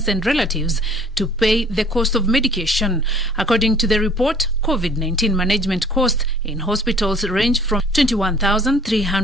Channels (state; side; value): normal; both; correlation 0.54